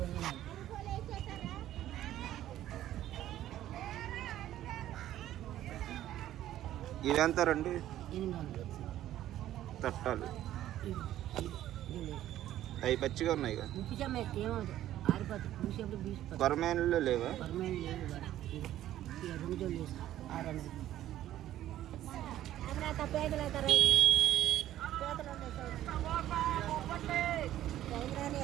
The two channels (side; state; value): left; quieter; 12.9 dB